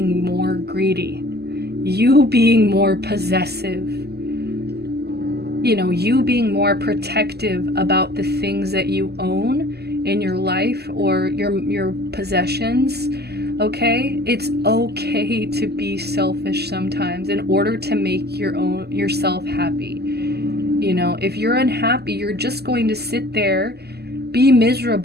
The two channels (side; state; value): left; late; 0.47 ms